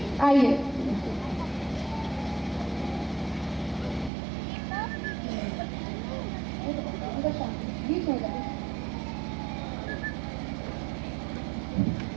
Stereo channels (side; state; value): left; drops out; at 4.1 s